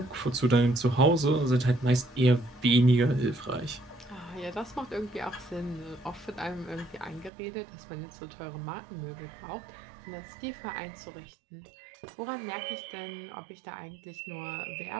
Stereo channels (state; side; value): drops out; left; at 7.3 s